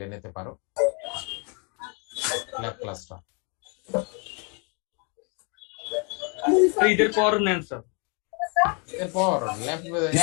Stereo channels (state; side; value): quieter; right; 35.4 dB